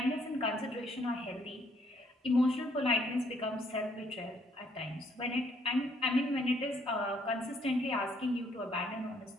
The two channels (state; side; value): normal; both; correlation 0.67